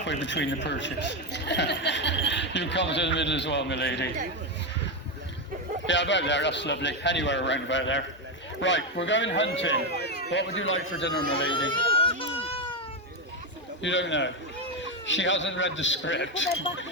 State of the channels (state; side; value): normal; both; correlation 0.09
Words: between the perches. You come to the middle as well, my lady. Yeah, about there, that's lovely. Anywhere around about there. Right, we're going hunting. What would you like for dinner, my lady? You don't know. She hasn't read the script.